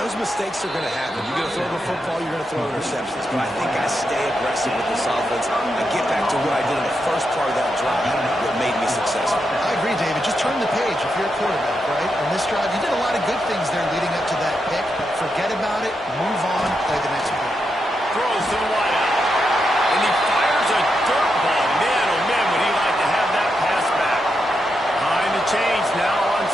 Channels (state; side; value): normal; both; correlation 0.84